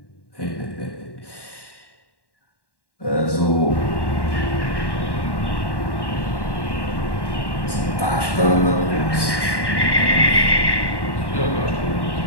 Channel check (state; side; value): late; right; 1.1 ms